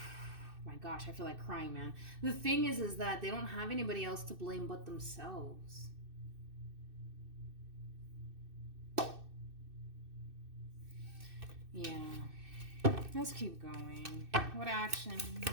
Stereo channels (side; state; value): left; late; 2.6 ms